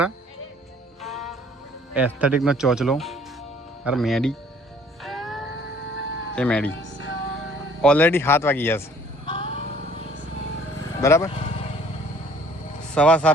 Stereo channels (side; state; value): both; normal; correlation 0.56